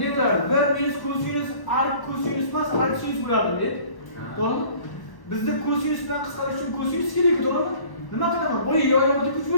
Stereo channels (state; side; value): late; right; 1.1 ms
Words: ne bo'lardi? 1 minus kosinus ark kosinus emas, ark sinus bo'lardi deb. To'g'rimi? Bizda kosinus bilan qisqarish uchun kosinus kerak, to'g'rimi? Nima qilaman? Bo'yi yo'yog'iga kuch